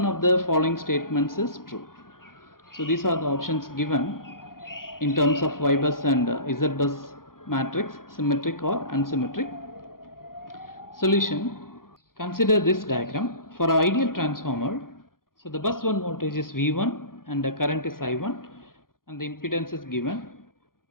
of the following statements is true? So these are the options given in terms of Y bus and Z bus matrix, symmetric or unsymmetric. Solution: consider this diagram. For an ideal transformer, so the bus 1 voltage is V1 and the current is I1 and the impedance is given,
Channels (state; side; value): late; right; 0.91 ms